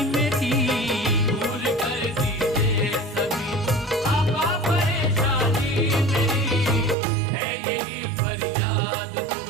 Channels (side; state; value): left; drops out; at 7.0 s